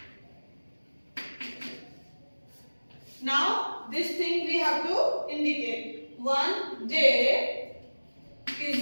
Now this thing we have to indicate. One day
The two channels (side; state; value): both; inverted; correlation -1.00